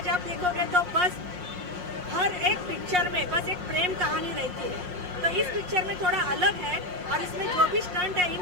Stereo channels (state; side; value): late; left; 5.6 ms